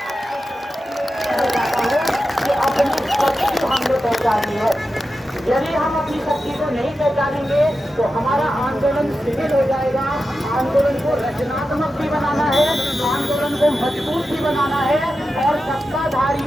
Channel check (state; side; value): normal; both; correlation 0.91